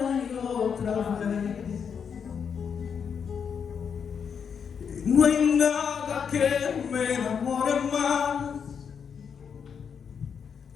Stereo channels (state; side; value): quieter; right; 6.9 dB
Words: y otra vez. No hay nada que me enamore más,